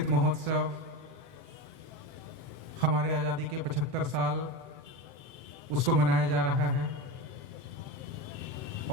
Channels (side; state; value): left; late; 7.8 ms